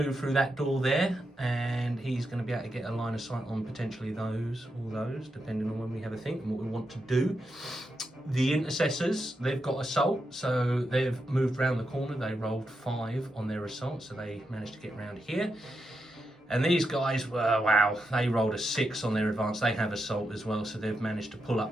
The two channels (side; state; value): both; normal; correlation 0.85